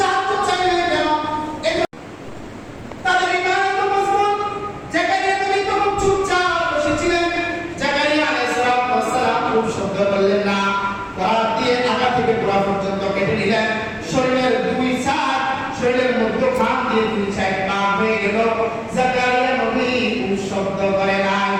চাইলেন কেন? তাদের ঈমান এত মজবুত। জাকারিয়া নবী তখন চুপচাপ বসেছিলেন। জাকারিয়া আলাইহিস সালাম খুব শব্দ করলেন না, করাত দিয়ে আগা থেকে গোড়া পর্যন্ত কেটে নিলেন। শরীরের দুই সাইড, শরীরের মধ্যখান দিয়ে দুই সাইড পার হয়ে গেল। জাকারিয়া নবী খুব শব্দ করে না,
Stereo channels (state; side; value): identical; both; correlation 1.00